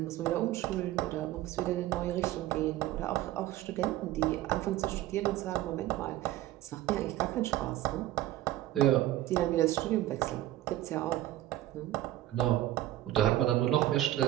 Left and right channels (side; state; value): left; quieter; 14.5 dB